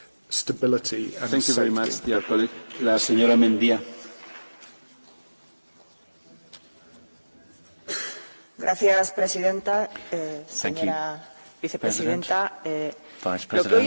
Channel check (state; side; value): inverted; both; correlation -1.00